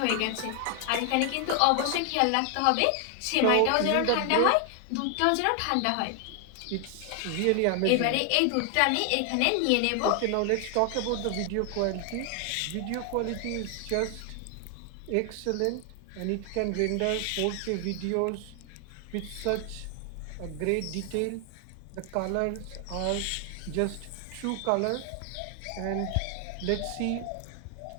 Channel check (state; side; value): different; both; correlation 0.00